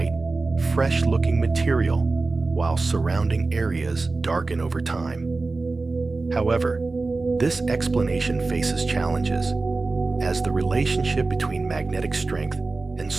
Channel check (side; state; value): left; quieter; 3.6 dB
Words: fresh-looking material, while surrounding areas darken over time. However, this explanation faces challenges, as the relationship between magnetic strength and